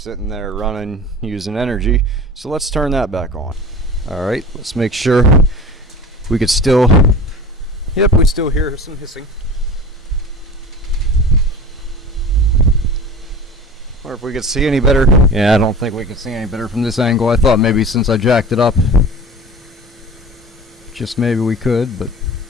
there running, using energy. So let's turn that back on. Alright, let's make sure we could still, yep, we still hear some hissing. Or if we could see any better. Yeah, I don't think we can see any better from this angle. I thought maybe since I jacked it up, just maybe we could, but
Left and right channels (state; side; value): normal; both; correlation 0.37